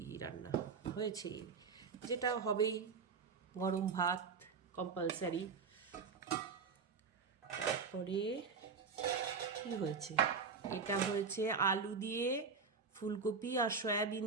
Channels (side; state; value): left; quieter; 5.3 dB